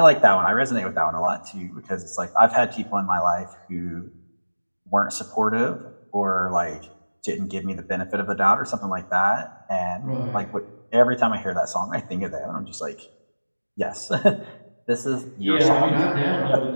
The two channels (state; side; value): inverted; both; correlation -1.00